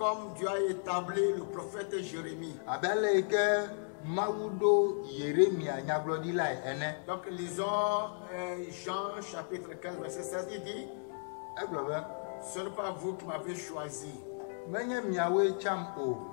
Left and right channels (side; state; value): right; silent; digital silence